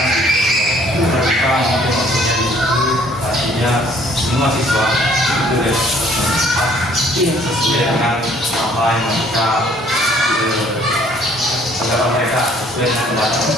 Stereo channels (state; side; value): normal; both; correlation 0.59